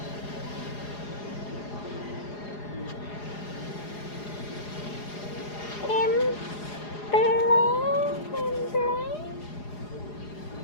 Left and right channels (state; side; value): late; right; 4.9 ms